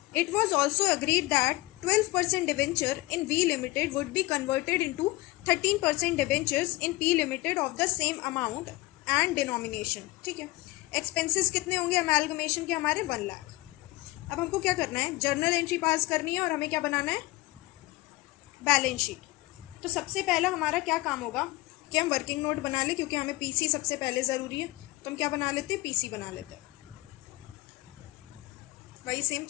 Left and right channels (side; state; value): right; quieter; 20.9 dB